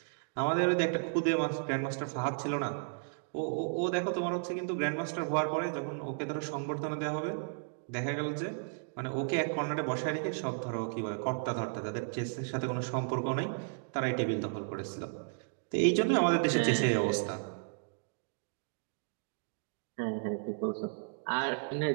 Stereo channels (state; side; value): silent; left; digital silence